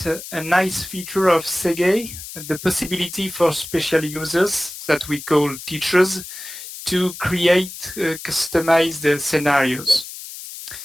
a nice feature of Segae, the possibility for special users that we call teachers to create customized scenarios.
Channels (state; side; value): noise; left; hiss, 12 dB below the sound